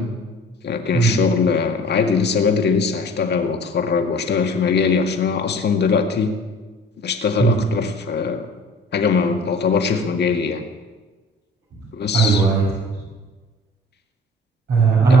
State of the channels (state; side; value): normal; both; correlation 0.46